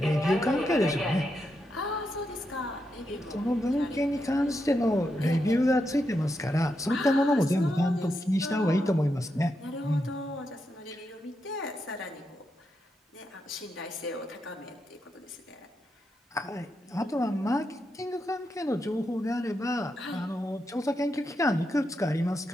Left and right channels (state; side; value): normal; both; correlation 0.84